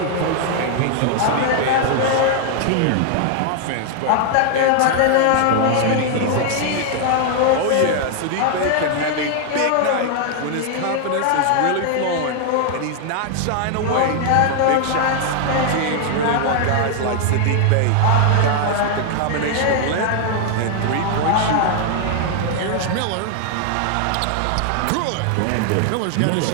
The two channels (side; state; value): both; different; correlation 0.00